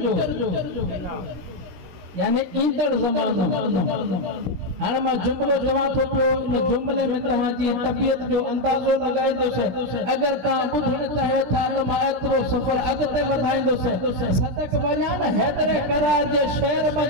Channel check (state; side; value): late; left; 16 ms